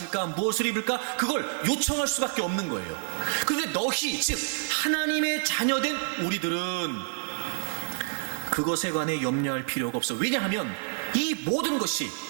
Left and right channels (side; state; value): left; silent; 59 dB below the other